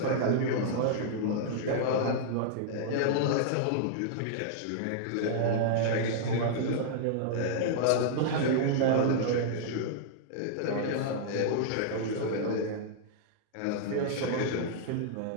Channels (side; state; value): both; different; correlation -0.01